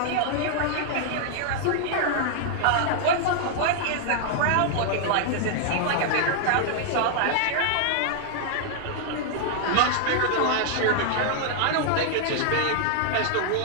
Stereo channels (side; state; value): both; different; correlation 0.00